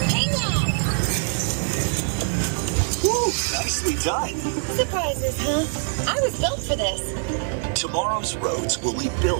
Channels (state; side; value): silent; left; 58 dB below the other